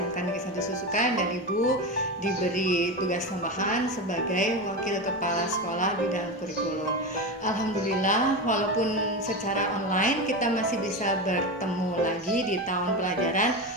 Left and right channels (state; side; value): normal; both; correlation 0.20